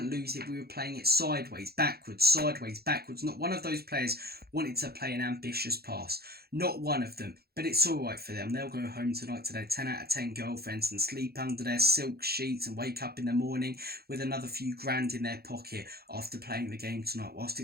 lose it, we were playing it sideways, backwards. Not one of those players wanted to play an ambitious pass. Not one of them. But it's all right for them. They'll go home tonight to their 10 out of 10 girlfriends and sleep under their silk sheets and wake up in the morning with another few grand in their pocket after playing the game tonight, whilst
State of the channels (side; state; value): left; late; 0.46 ms